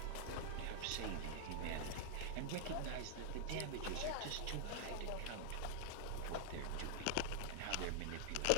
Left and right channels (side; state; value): both; different; correlation 0.00